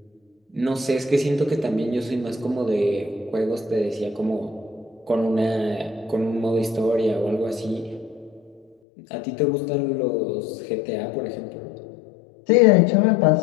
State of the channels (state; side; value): drops out; right; at 8.8 s